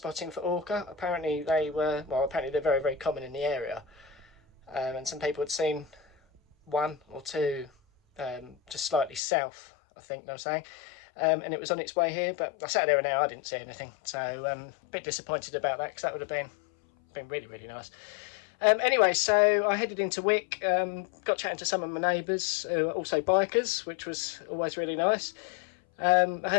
for orca. Apparently they're very, very common in the area. And some people had seen one or two just slightly south, I think they were saying. And it was on its way here, but I sat there an hour, I didn't see anything. So a bit disappointed about that, because that would have been really, really nice. Anyway, so I headed into Wick, got chatting to some of my neighbours who are also bikers, which was always really nice. I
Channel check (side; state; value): right; drops out; at 9.2 s